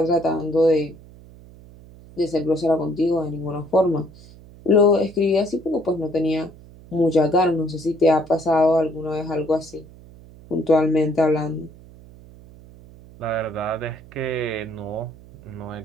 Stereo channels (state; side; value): noise; right; hum, 21 dB below the sound